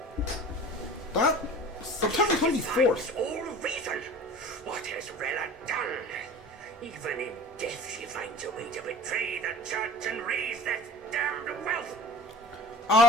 That September 24th. All reason! What has Rella done? Even in death she finds a way to betray the church and raise that damned wealth!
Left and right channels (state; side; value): normal; both; correlation 0.42